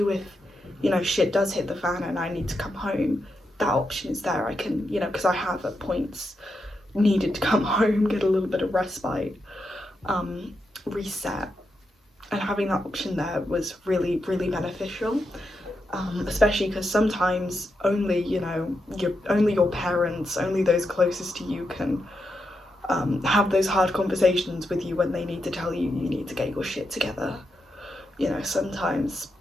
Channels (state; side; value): normal; both; correlation 0.85